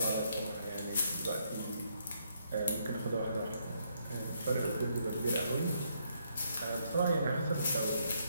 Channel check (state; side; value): inverted; both; correlation -0.74